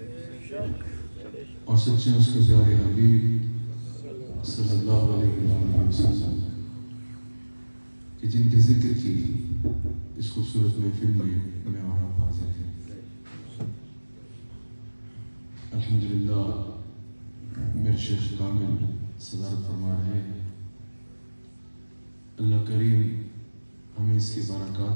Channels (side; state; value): both; inverted; correlation -1.00